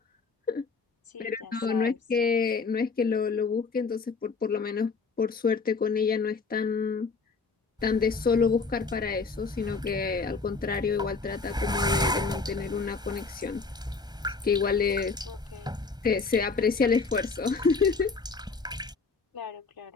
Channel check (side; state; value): right; quieter; 4.5 dB